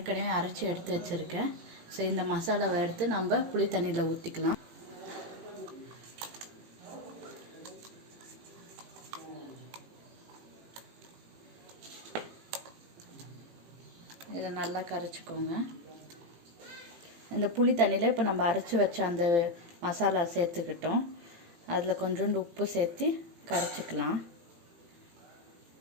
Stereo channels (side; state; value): left; late; 18 ms